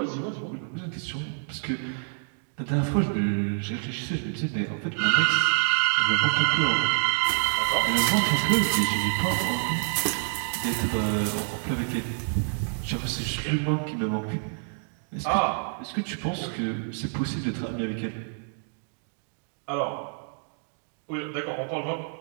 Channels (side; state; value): left; silent; 60 dB below the other